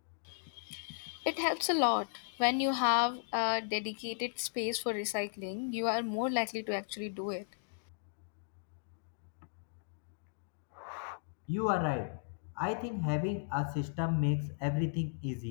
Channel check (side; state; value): right; silent; digital silence